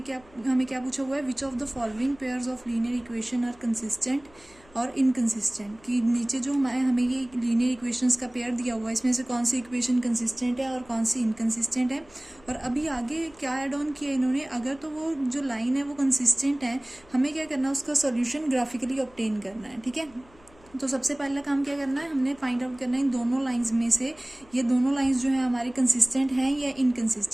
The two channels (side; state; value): left; noise; hum, 27 dB below the sound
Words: क्या पूछा हुआ है, which of the following pairs of linear equation are consistent और इनकंसिस्टेंट। कि नीचे जो हमें ये लीनियर इक्वेशंस का पेयर दिया हुआ है, इसमें से कौन सी इक्वेशन कंसिस्टेंट है और कौन सी इनकंसिस्टेंट है। और अभी आगे क्या ऐड ऑन किया इन्होंने, अगर तो वो जो लाइन है वो कंसिस्टेंट है, हमें क्या करना है, उसका सॉल्यूशन ग्राफिकली ऑब्टेन करना है। ठीक है, तो सबसे पहला काम क्या करना है, हमने फाइंड आउट करना है इन दोनों लाइंस में से ये दोनों लाइंस जो है हमारी कंसिस्टेंट हैं या